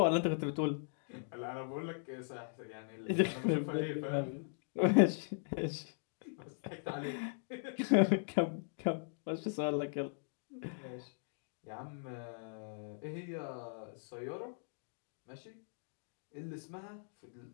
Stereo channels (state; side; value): silent; right; digital silence